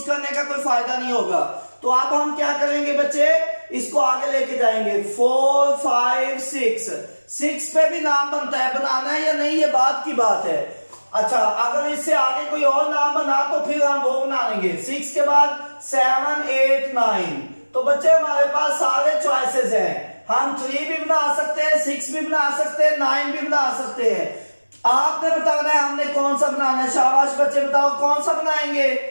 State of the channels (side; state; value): both; inverted; correlation -1.00